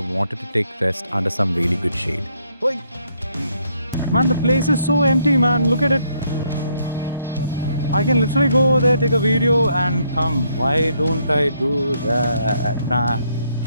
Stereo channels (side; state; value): both; inverted; correlation -0.72